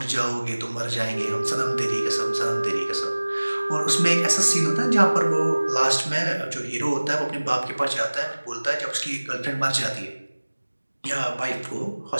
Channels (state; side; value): inverted; both; correlation -1.00